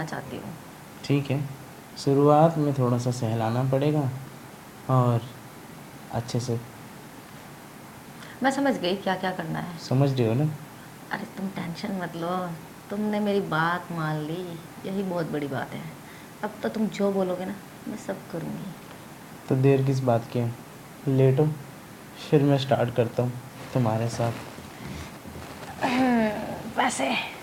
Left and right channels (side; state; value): both; identical; correlation 1.00